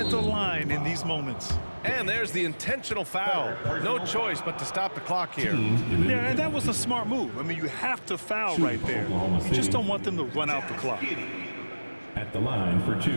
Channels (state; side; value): inverted; both; correlation -1.00